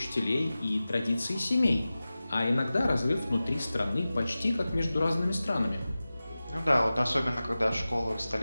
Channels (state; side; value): inverted; both; correlation -0.96